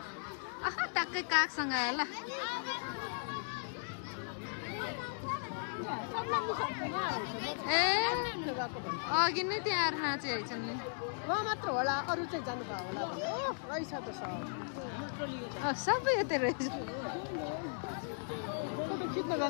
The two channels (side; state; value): right; silent; digital silence